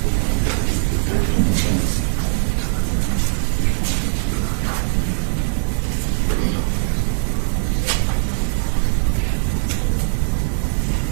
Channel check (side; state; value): left; silent; digital silence